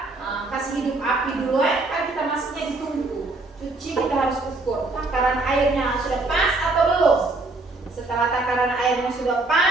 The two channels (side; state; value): left; quieter; 3.2 dB